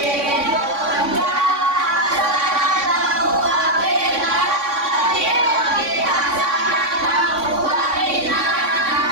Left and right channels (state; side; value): late; left; 3.6 ms